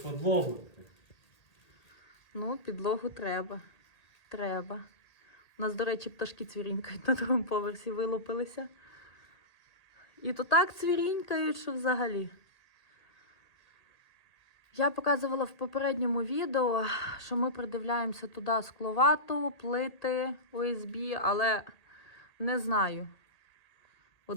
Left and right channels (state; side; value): late; right; 1.8 ms